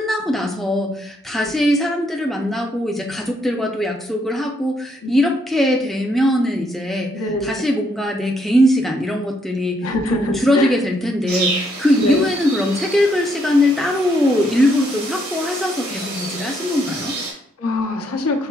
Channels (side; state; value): both; normal; correlation 0.73